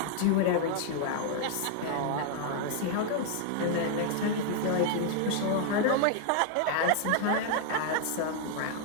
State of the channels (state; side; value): different; both; correlation 0.00